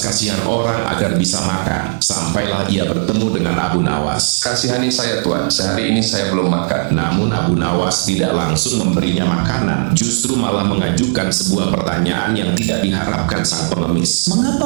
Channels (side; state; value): left; silent; digital silence